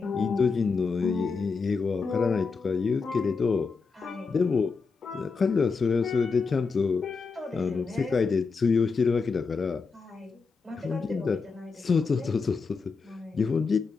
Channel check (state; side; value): quieter; right; 4.8 dB